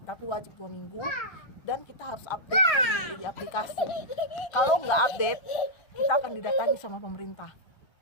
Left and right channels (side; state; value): right; late; 1.2 ms